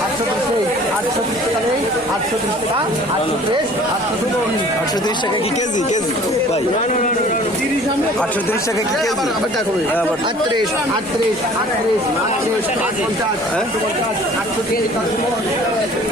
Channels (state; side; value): normal; both; correlation 0.50